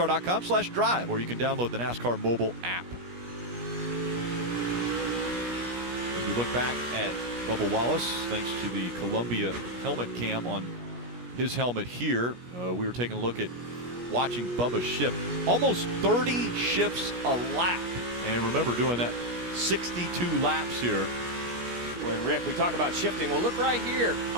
or you can download the NASCAR mobile app. As we look back at Bubba Wallace, thanks to the Columbia helmet cam on his helmet here, we were taking a look at watching Bubba shift almost 30 shifts a lap. And remember, doing that 62 laps here. When Rick, we talk about shifting. Well, look right here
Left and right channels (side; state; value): left; late; 17 ms